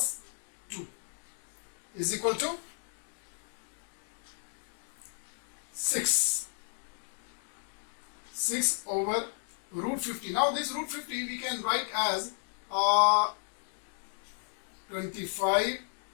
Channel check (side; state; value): right; silent; digital silence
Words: 2 is equal to 6. 6 over root 50. Now this root 50 we can write as 25